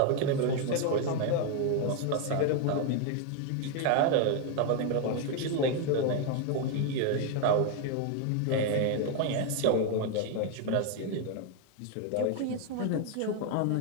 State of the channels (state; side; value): different; both; correlation 0.01